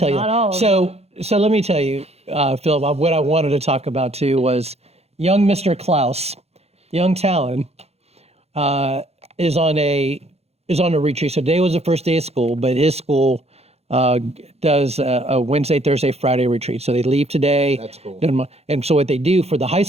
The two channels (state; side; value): late; left; 0.30 ms